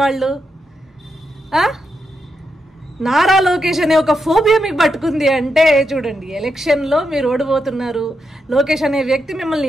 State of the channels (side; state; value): both; normal; correlation 0.84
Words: వాళ్ళు. నారా లోకేష్ అనే ఒక ఫోబియా మీకు పట్టుకుంది అంటే చూడండి, ఎలక్షన్లో మీరు ఓడిపోతున్నారు, లోకేష్ అనే వ్యక్తి మిమ్మల్ని